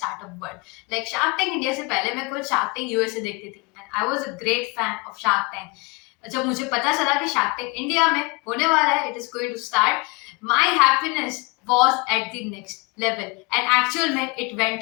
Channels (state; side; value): quieter; right; 27.2 dB